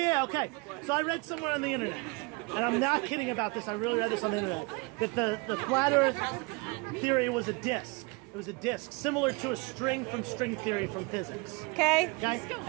okay. So I read somewhere on the internet, and I'm not kidding about this, I really read this on the internet, that the flat Earth theory was a disc. It was a disc, similar to a string from string theory from physics. Okay. Okay?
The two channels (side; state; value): left; quieter; 27.9 dB